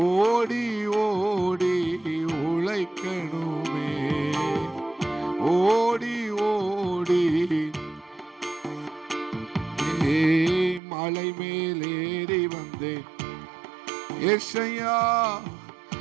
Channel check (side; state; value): left; drops out; at 10.8 s